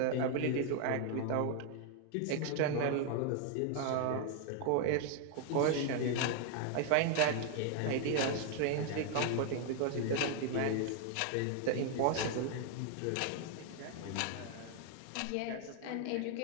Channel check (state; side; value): different; both; correlation 0.00